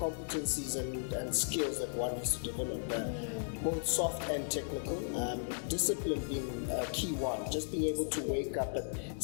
and skills that one needs to develop, both soft and technical. Discipline being a key one. Just being able to wake up at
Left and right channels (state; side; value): silent; right; digital silence